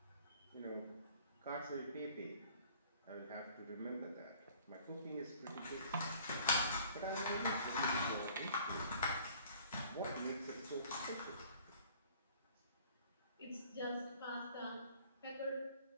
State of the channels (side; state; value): both; inverted; correlation -0.54